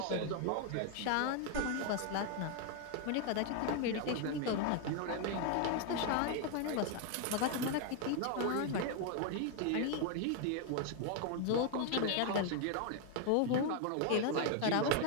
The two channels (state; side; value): different; both; correlation 0.00